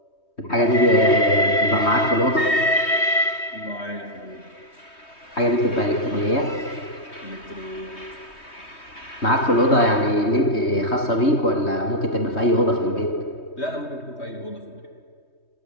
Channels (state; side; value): late; right; 3.2 ms